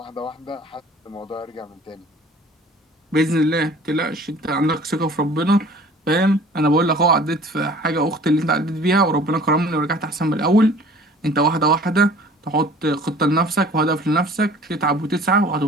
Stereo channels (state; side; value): normal; both; correlation 0.48